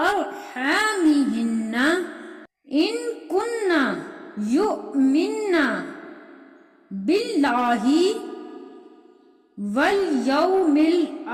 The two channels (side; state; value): both; identical; correlation 1.00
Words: إن كن يؤمن بالله واليوم